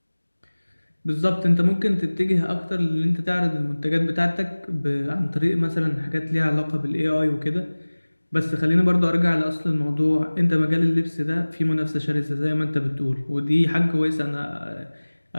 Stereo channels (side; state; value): both; inverted; correlation -1.00